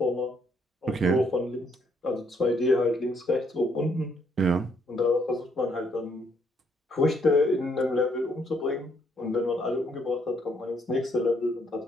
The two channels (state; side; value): normal; both; correlation 0.70